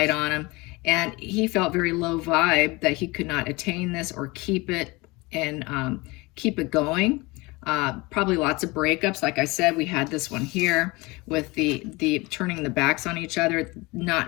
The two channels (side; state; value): right; quieter; 23.8 dB